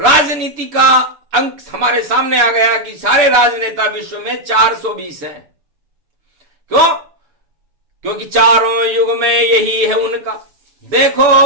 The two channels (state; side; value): late; left; 6.9 ms